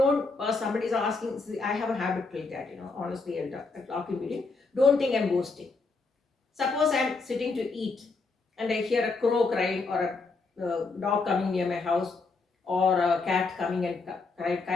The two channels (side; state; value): right; quieter; 4.0 dB